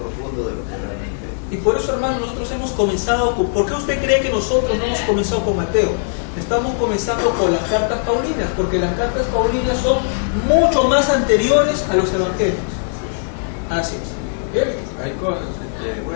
de lo que realmente. Y por eso, hermano, nosotros hemos comenzado con... ¿Por qué usted cree que nosotros no hemos comenzado con Mateo? Estamos comenzando con las cartas paulinas, porque las cartas paulinas son mucho más anteriores a los evangelios. Así es. ¿Bien? Hay cosas,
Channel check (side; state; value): right; silent; digital silence